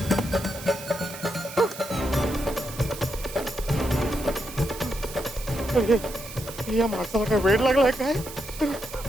ये माणसाला काय वेळ लागलाय काय?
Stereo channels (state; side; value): noise; right; hiss, 13 dB below the sound